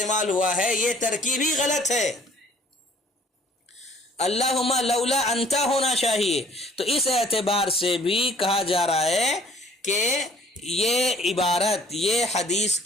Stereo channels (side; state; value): both; normal; correlation 0.55